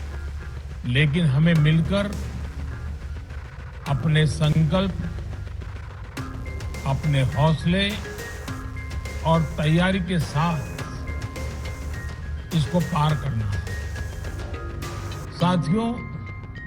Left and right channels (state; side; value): identical; both; correlation 1.00